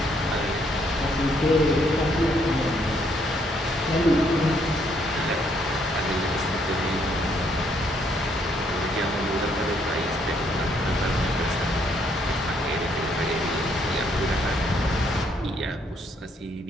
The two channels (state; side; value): normal; both; correlation 0.70